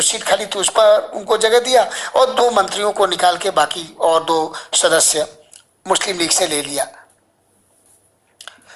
सीट खाली थी उस पर उनको जगह दिया और 2 मंत्रियों को निकाल के बाकी और 2 सदस्य मुस्लिम लीग से ले लिया।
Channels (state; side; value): identical; both; correlation 1.00